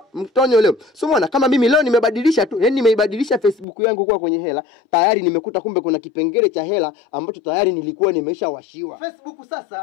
mtonyo leo. So umeona kama mimi leo nimebadilisha tu, yani nimeibadilisha Facebook yangu kuwa kwenye hela, tayari nimekuta kumbe kuna kipengele cha hela ambacho tayari nilikuwa nimeshawashiwa. Facebook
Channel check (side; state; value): right; drops out; at 3.7 s